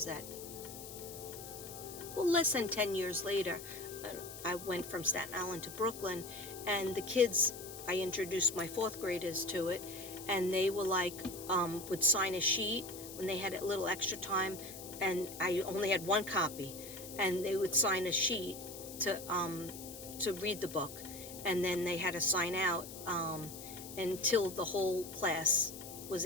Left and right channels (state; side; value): noise; left; hiss, 12 dB below the sound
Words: that? Well, less than 10 years later, I went from Staten Island to Brooklyn, and the kids, I introduced my fourth graders to it, and they were like, would sign a sheet when they had a little extra time, and I only had one copy, and they would sign a sheet to read the book, and then they had to sign out until the whole class was